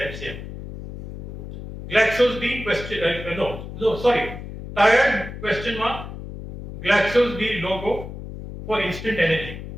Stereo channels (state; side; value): noise; left; hum, 10 dB below the sound